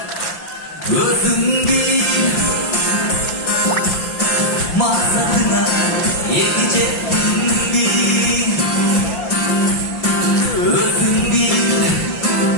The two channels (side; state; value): right; late; 5.9 ms